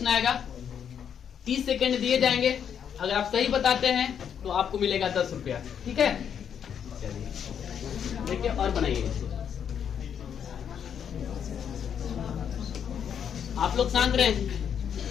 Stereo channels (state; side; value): quieter; right; 8.2 dB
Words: आएगा, 30 सेकंड दिए जाएंगे। अगर आप सही बताते हैं तो आपको मिलेगा 10 रुपया, ठीक है? चलिए देखिए और बनाइए। आप लोग शांत रहें।